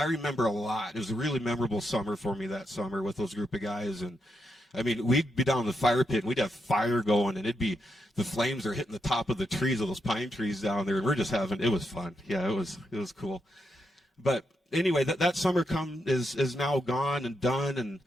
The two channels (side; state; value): both; normal; correlation 0.83